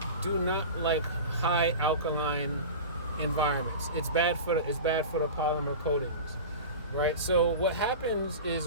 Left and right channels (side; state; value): both; inverted; correlation -0.31